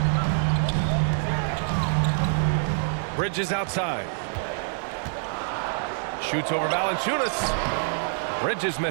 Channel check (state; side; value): silent; left; 57 dB below the other